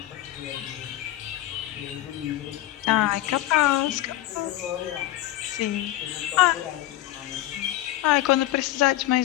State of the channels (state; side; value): quieter; right; 14.8 dB